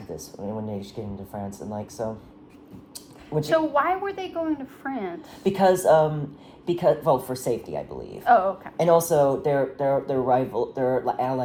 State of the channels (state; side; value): identical; both; correlation 1.00